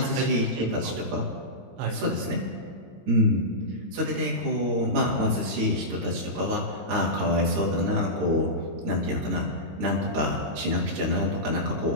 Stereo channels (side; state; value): left; late; 22 ms